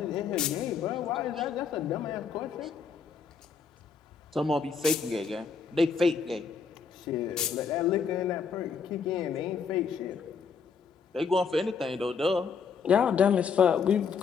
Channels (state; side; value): quieter; right; 5.8 dB